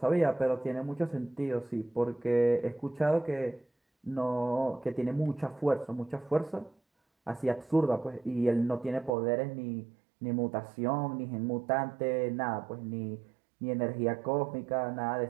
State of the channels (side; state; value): left; drops out; at 9.1 s